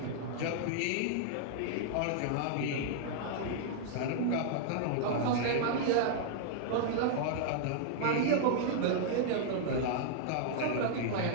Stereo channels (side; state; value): both; different; correlation -0.01